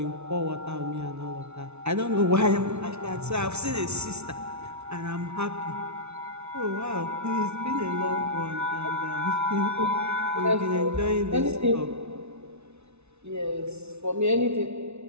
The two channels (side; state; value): left; late; 0.81 ms